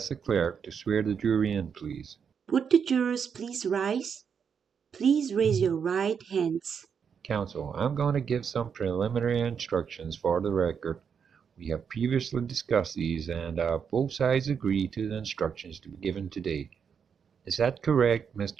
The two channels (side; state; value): left; quieter; 6.9 dB